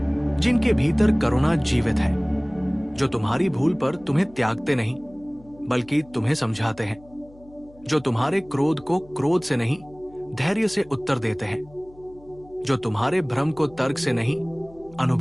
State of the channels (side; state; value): left; noise; hum, 25 dB below the sound